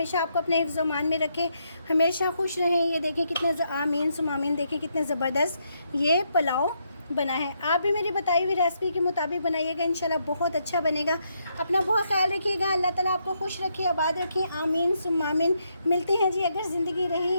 आपको अपने हिफ्ज़ मान में रखे, हमेशा खुश रहें। ये देखें कितने आमीन सुमामीन, देखें कितने ज़बरदस्त ये पुलाव बना है। आप भी मेरी बताई हुई रेसिपी के मुताबिक बनाइएगा, इंशाल्लाह बहुत अच्छा बनेगा। अपना बहुत ख्याल रखिएगा, अल्लाह ताला आपको खुश रखे, आबाद रखे, आमीन सुमामीन। मिलते हैं जी अगर ज़िंदगी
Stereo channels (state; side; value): inverted; both; correlation -0.78